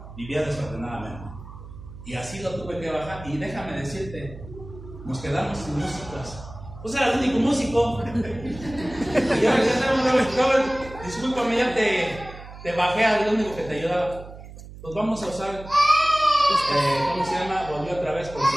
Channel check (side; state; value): right; noise; hum, 15 dB below the sound